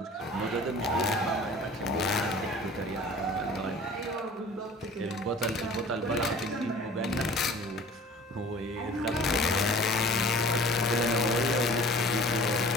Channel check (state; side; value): normal; both; correlation 0.46